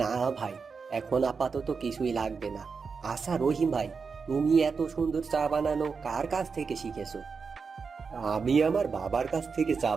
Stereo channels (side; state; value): left; quieter; 5.3 dB